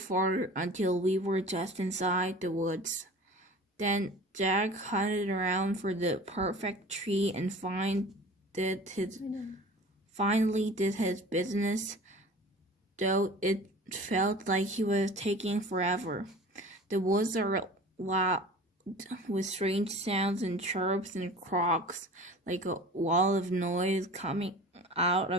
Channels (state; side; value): normal; both; correlation 0.41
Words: until we were just inside the woods. Then Jack hunted around for the perfect tree and finally did his business, though it felt like he was taking forever. The woods are loud with strange sounds and chirps and croaks, like a wall of noise coming out